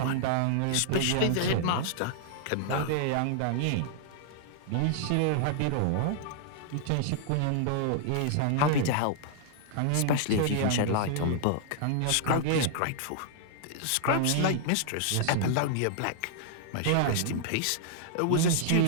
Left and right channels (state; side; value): different; both; correlation -0.01